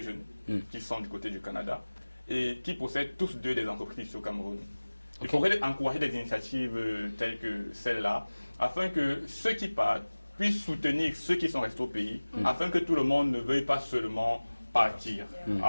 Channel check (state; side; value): inverted; both; correlation -1.00